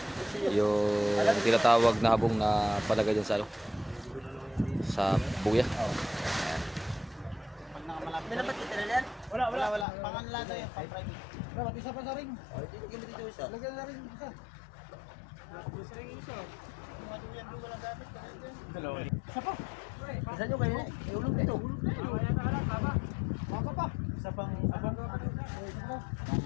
Yung tinatawag na habong na palagay dyan sa ano, sa buya. Minabat kita na yan? Wala. Panganla na yan, pang-private. Dapat isa pa sa ring. Tigil mo dito isa. Lagyan na rin isa. Gusto rin isa. Maduyan doon walang gamit. Isa pa. Isa nyo kayo. Iulog dito. Baka pa. Isa pang...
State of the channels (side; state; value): right; drops out; at 9.9 s